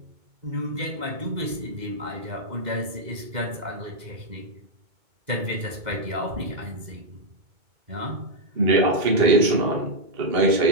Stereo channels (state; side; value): late; left; 2.1 ms